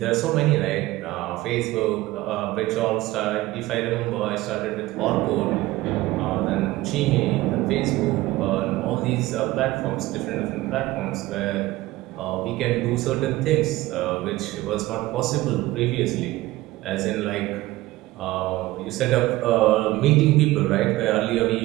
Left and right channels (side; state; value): left; quieter; 17.9 dB